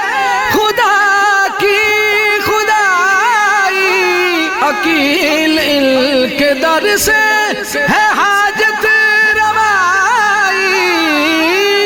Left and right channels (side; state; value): both; identical; correlation 1.00